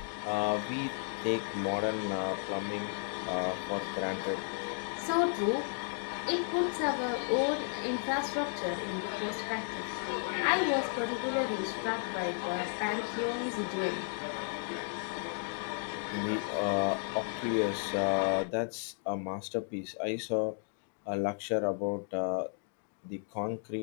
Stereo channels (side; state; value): right; silent; 55 dB below the other